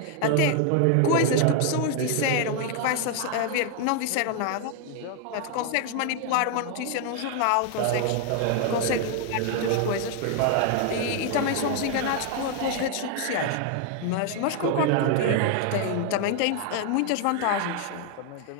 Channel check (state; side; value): different; both; correlation 0.00